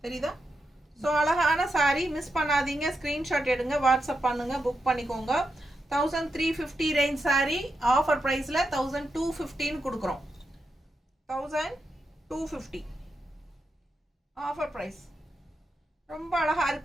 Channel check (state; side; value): normal; both; correlation 0.86